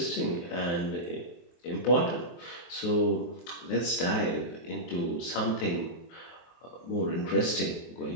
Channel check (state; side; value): late; right; 23 ms